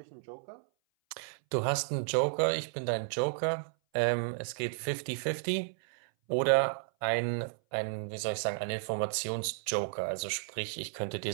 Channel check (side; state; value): left; silent; 56 dB below the other